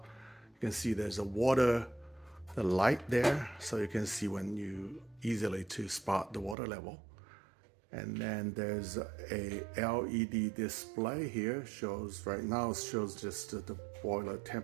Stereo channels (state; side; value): drops out; left; at 6.6 s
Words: You can see there's the light there, so you can see when you easily to spot the water level. And then there's a LED display here, right now shows just the boiler